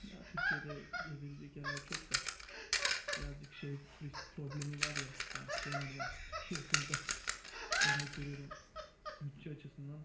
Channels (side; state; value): both; identical; correlation 1.00